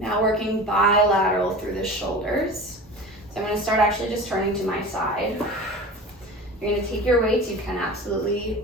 working bilateral through the shoulders. So I'm going to start actually just turning to my side. You're going to take your weights. You can absolutely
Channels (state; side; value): normal; both; correlation 0.35